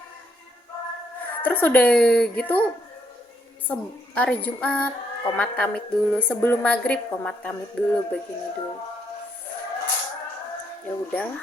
Terus udah gitu hari Jumat komat kamit dulu, sebelum maghrib komat kamit dulu, begini dulu. Ya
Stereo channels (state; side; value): normal; both; correlation 0.73